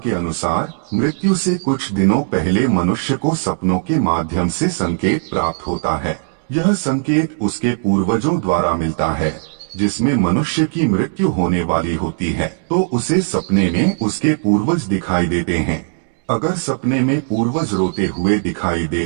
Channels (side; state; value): left; silent; digital silence